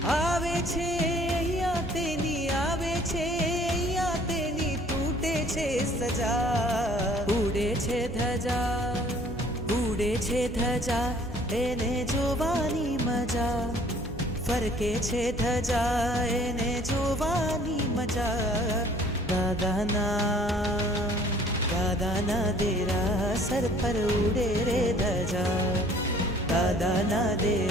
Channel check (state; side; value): normal; both; correlation 0.55